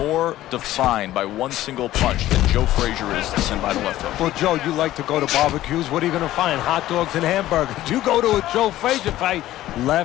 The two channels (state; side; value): quieter; right; 14.6 dB